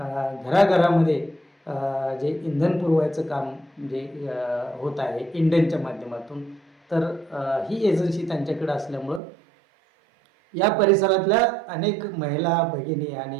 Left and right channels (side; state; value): left; drops out; at 9.2 s